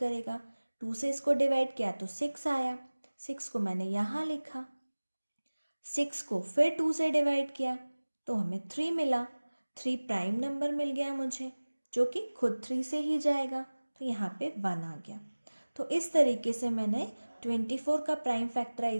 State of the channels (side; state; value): both; inverted; correlation -1.00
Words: 2 से इसको डिवाइड किया तो 6 आया, 6 को मैंने यहाँ लिखा। 6 को फिर 2 से डिवाइड किया तो हमें 3 मिला। 3 प्राइम नंबर मिल गया मुझे जो कि खुद 3 से ही जाएगा, तो यहाँ पे 1 आ गया। तो इस तरीके से मैंने 24 का प्राइम